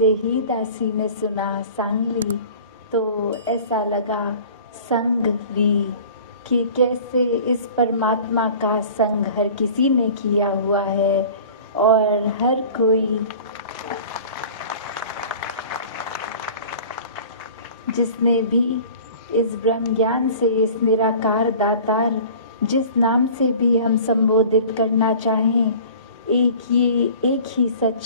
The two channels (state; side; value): inverted; both; correlation -0.43